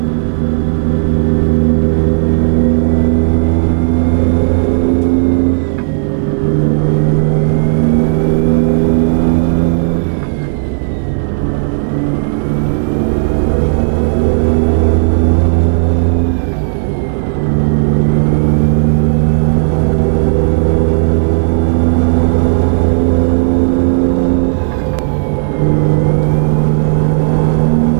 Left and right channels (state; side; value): silent; left; 67 dB below the other